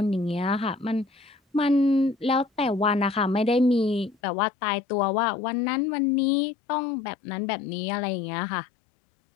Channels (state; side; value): drops out; right; at 4.2 s